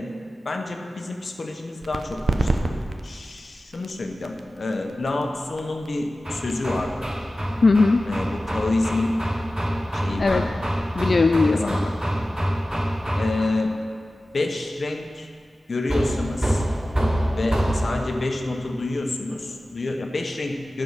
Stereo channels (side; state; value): both; normal; correlation 0.96